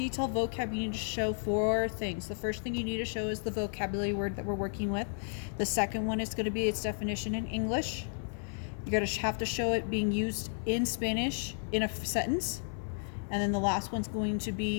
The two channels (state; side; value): silent; right; 56 dB below the other